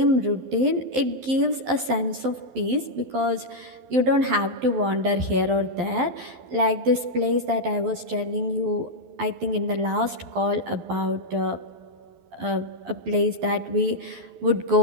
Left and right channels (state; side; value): late; left; 12 ms